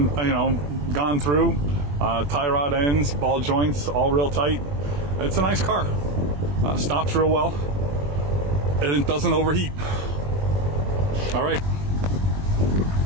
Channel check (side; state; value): left; late; 21 ms